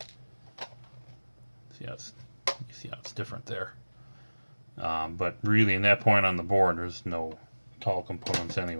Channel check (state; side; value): inverted; both; correlation -1.00